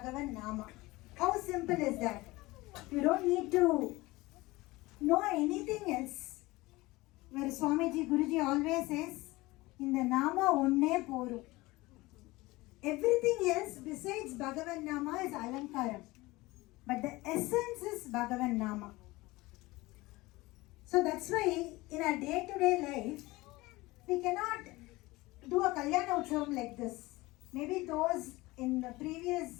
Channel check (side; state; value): right; quieter; 20.7 dB